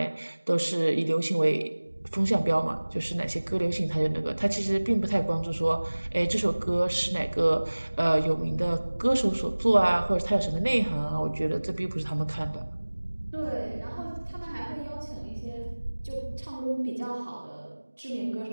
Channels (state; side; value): inverted; both; correlation -1.00